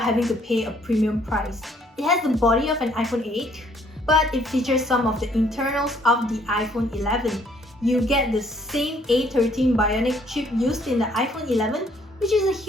having to pay a premium price. It has the body of an iPhone 8, but it features some of the internals of the iPhone 11. You get the same A13 Bionic chip used in the iPhone 11, which is a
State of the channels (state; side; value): normal; both; correlation 0.64